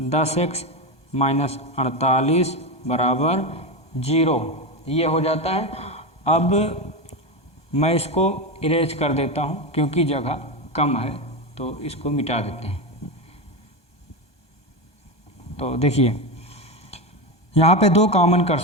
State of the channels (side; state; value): right; late; 1.2 ms